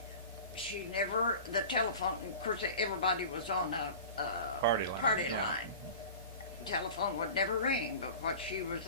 She never, the telephone, of course everybody was on a party line. Telephone would never ring, but what she was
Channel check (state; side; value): inverted; both; correlation -0.36